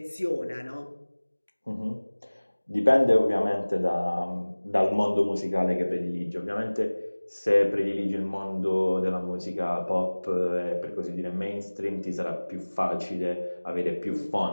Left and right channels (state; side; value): inverted; both; correlation -1.00